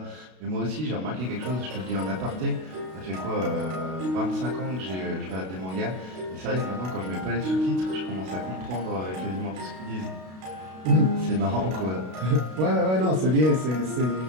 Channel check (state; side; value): late; left; 32 ms